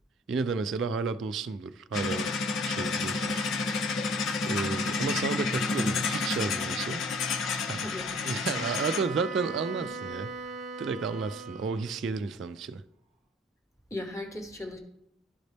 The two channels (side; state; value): both; normal; correlation 0.53